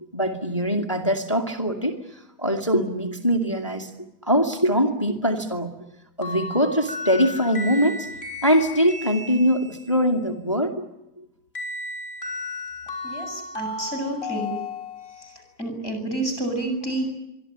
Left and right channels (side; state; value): both; inverted; correlation -0.40